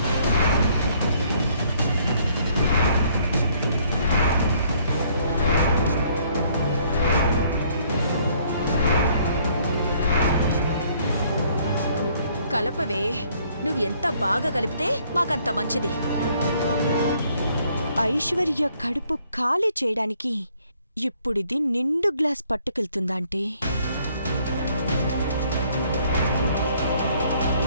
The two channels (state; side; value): inverted; both; correlation -0.64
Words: కలపవే, నువ్వు ఎంత బాగా కలిపితే మాకంత మంచిది. ఐశ్వర్య కడుపు ఖాళీ చేయడానికి ఇప్పుడిది నిండు గ్లాస్ పట్టుకెళ్తుందా అంటే?